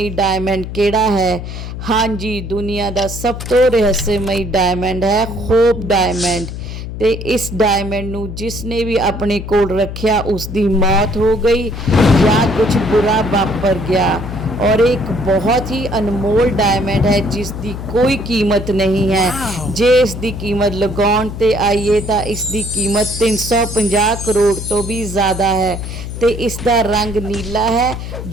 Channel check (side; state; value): left; noise; hum, 8 dB below the sound